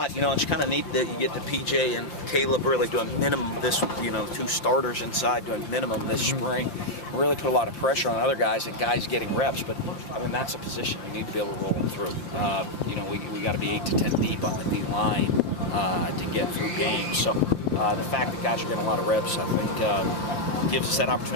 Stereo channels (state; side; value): late; right; 5.8 ms